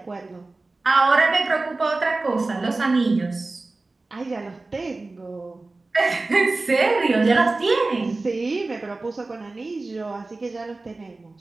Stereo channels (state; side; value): quieter; left; 3.3 dB